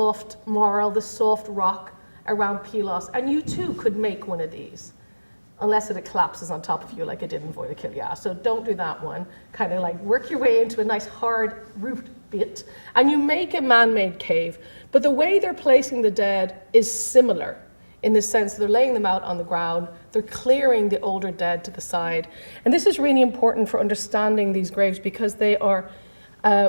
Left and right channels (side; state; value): both; inverted; correlation -1.00